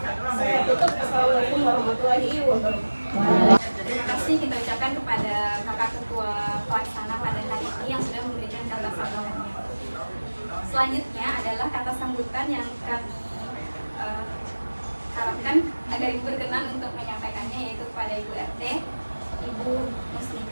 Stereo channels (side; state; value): both; inverted; correlation -1.00